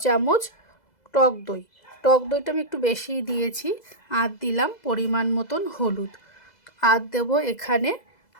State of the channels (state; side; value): late; right; 2.0 ms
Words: চামচ টক দই। টক দইটা আমি একটু বেশিই দিয়েছি। আর দিলাম পরিমাণ মতন হলুদ, আর দেবো এখানে